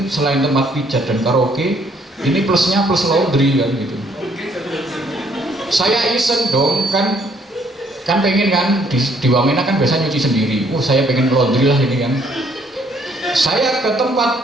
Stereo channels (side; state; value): both; normal; correlation 0.66